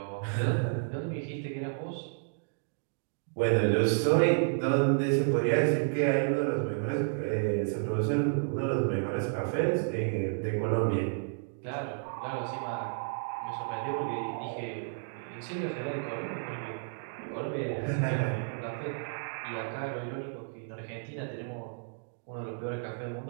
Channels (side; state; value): left; silent; digital silence